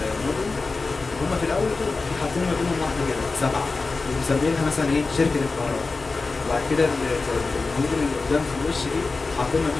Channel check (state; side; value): quieter; right; 3.9 dB